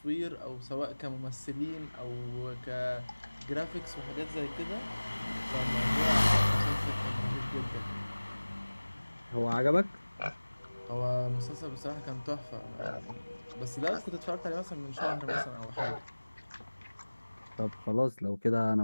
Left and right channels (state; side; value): inverted; both; correlation -1.00